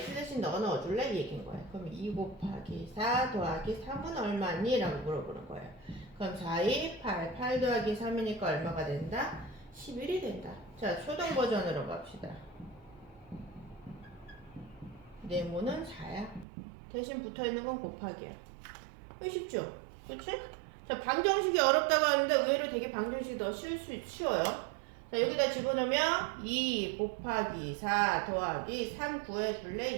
대신 넣어줄래? 이 얘기인 거예요. 그럼 2 곱하기 4 더하기 3은 얼마니? 라고 물어보는 거예요. 그럼 4, 2, 8 더하기 3이니까 얼마가 된다? 11이 된다. 자, 초등 버전으로 갑시다. 네모는 4야. 대신 붙어있는 건 곱하기야. 쉽죠? 그치? 자, 방정식이 어렵다고 하는데 의외로 되게 방정식이 더 쉬워요. 자, 여기다 집어넣으면 2 곱하기 4 더하기 3 구해줄래?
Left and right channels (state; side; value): drops out; left; at 16.4 s